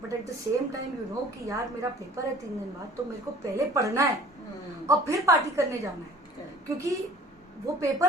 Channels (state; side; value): normal; both; correlation 0.49